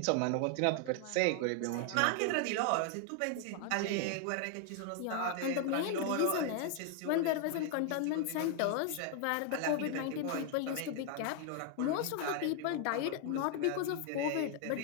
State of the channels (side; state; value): both; different; correlation 0.00